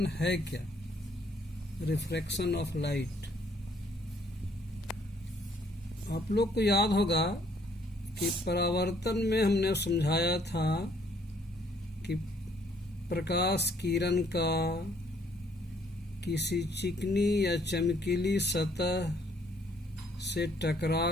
है क्या, रिफ्रैक्शन ऑफ लाइट। आप लोग को याद होगा कि परावर्तन में हमने समझाया था कि प्रकाश किरण का किसी चिकनी या चमकीली सतह से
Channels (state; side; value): normal; both; correlation 0.65